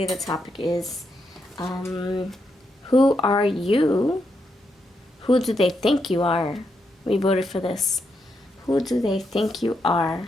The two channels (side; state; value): both; normal; correlation 0.81